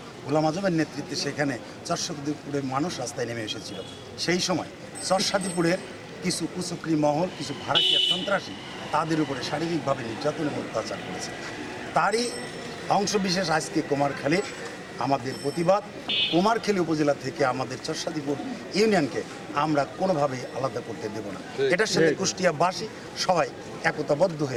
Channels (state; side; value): identical; both; correlation 1.00